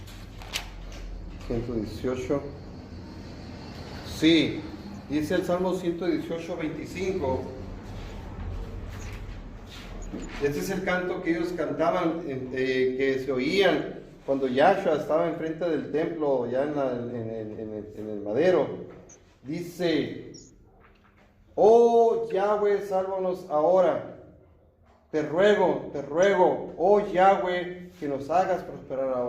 118. Sí, dice el Salmo 118, 25. Ese es el canto que ellos cantaban, que se oían cuando Yahshua estaba enfrente del templo, ya en el madero. Dice, oh Yahweh, sálvanos ahora. Te ruego, oh Yahweh, que nos hagas prosperar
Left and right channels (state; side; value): identical; both; correlation 1.00